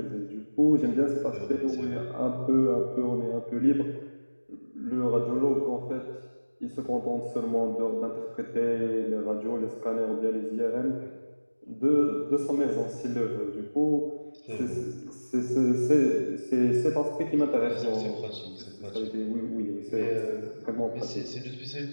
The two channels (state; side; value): inverted; both; correlation -1.00